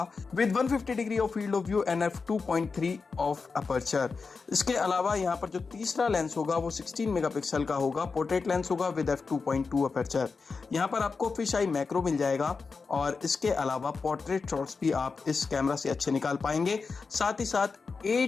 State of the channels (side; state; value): right; quieter; 4.7 dB